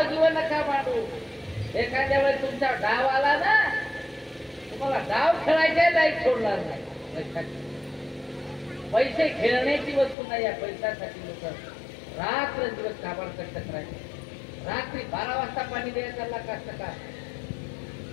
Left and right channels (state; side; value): drops out; right; at 10.2 s